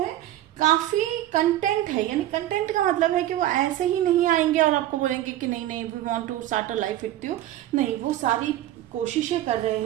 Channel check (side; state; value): left; quieter; 13.8 dB